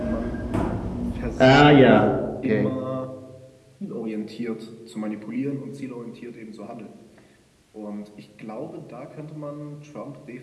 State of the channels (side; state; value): both; identical; correlation 1.00